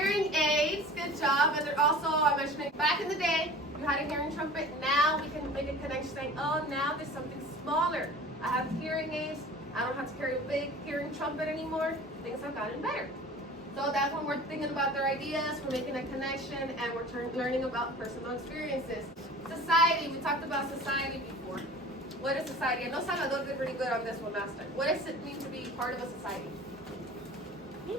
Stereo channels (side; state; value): both; normal; correlation 0.41